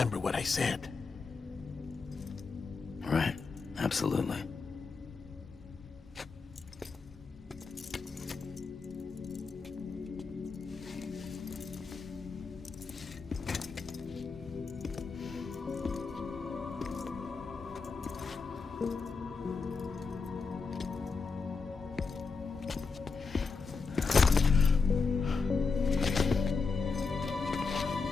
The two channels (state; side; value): quieter; right; 4.7 dB